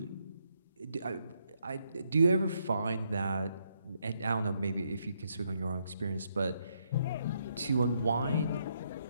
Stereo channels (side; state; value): both; inverted; correlation -0.76